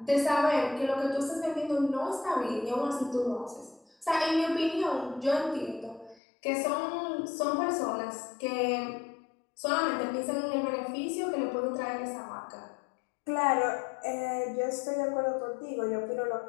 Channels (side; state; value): right; drops out; at 6.2 s